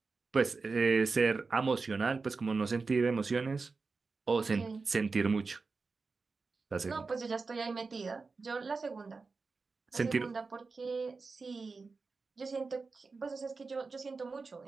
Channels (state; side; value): quieter; left; 4.3 dB